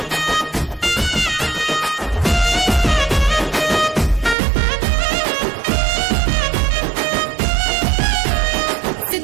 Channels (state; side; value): drops out; left; at 4.4 s